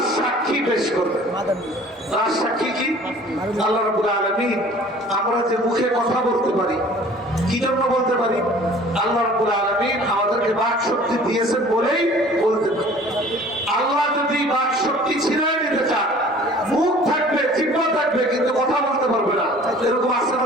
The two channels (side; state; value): both; normal; correlation 0.49